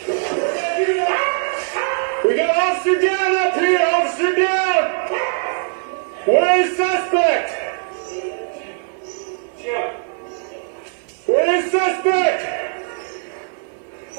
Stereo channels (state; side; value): silent; left; 59 dB below the other